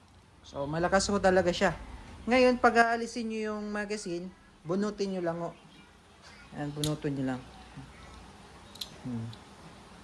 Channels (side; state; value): both; identical; correlation 1.00